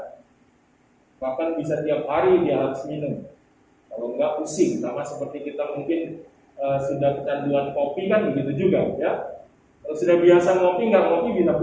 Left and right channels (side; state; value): both; identical; correlation 1.00